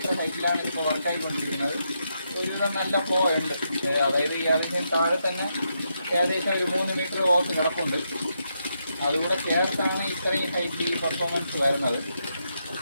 ഹൈറ്റിലാണ് ഇപ്പോൾ വർക്കായിക്കൊണ്ടിരിക്കുന്നത്. ഒരുവിധം നല്ല ഫ്ലോ ഉണ്ട്. അതായത് ഈ അതിന് താഴെ തന്നെ ഏകദേശം ഒരു 3 മീറ്റർ ഓസ് കിടപ്പുണ്ട്. അതുകൂടെ ചേർത്താണ് ഇത്രയും ഹൈറ്റ് ഈ പെർഫോമൻസ് വരുന്നത്.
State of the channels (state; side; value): inverted; both; correlation -0.81